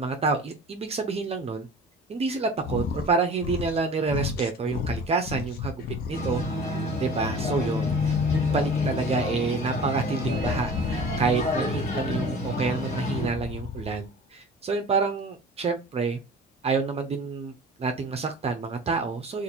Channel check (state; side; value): normal; both; correlation 0.41